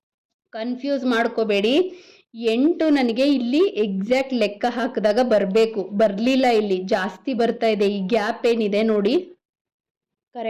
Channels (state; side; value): identical; both; correlation 1.00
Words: ಕನ್ಫ್ಯೂಸ್ ಮಾಡ್ಕೋಬೇಡಿ. 8 ನನಗೆ ಇಲ್ಲಿ ಎಕ್ಸಾಕ್ಟ್ ಲೆಕ್ಕ ಹಾಕಿದಾಗ ಬರಬೇಕು, ಬರಲಿಲ್ಲ, ಇಲ್ಲಿ ಜಾಸ್ತಿ ಬರ್ತಾ ಇದೆ. ಈ ಗ್ಯಾಪ್ ಏನಿದೆ ನೋಡಿ,